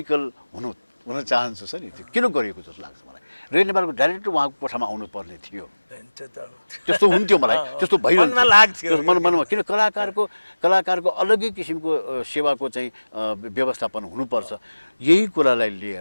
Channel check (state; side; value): inverted; both; correlation -1.00